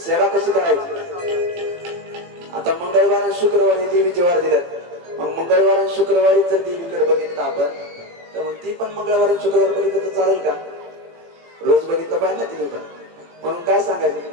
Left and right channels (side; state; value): left; late; 18 ms